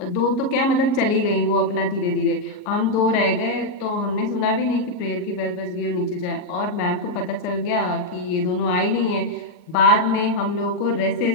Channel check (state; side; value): late; right; 38 ms